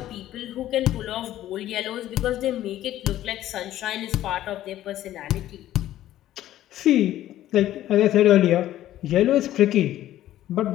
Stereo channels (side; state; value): right; quieter; 13.4 dB